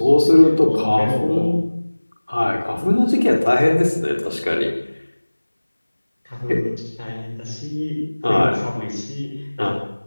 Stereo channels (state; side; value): inverted; both; correlation -1.00